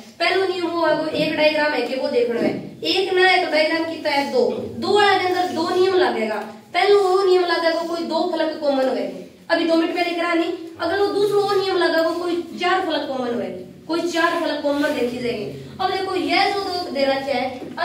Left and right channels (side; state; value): both; identical; correlation 1.00